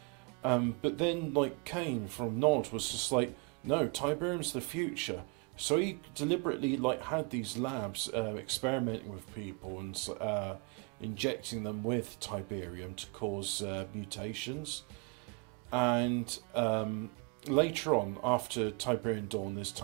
But then, like Kane from Nod was just like, no, Tiberium's the future. So he deliberately had these labs experimenting with people and injecting them with Tiberium to cause mutations. And later on, after Tiberian Dawn, there's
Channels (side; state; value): left; quieter; 32.3 dB